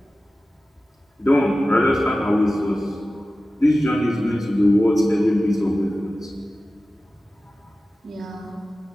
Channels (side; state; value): both; normal; correlation 0.95